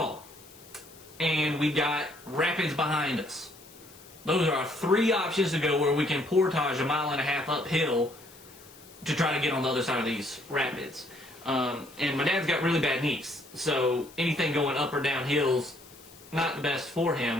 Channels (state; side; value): noise; left; hiss, 22 dB below the sound